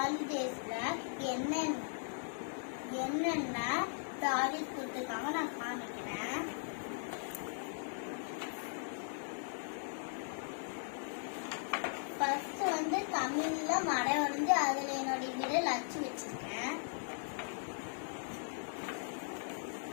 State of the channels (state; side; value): silent; right; digital silence